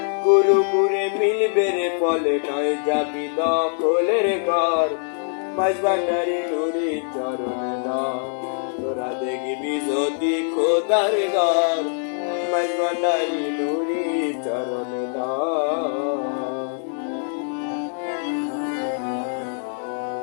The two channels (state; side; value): silent; right; digital silence